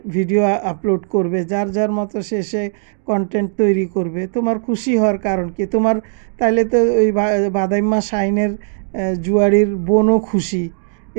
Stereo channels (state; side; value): silent; left; digital silence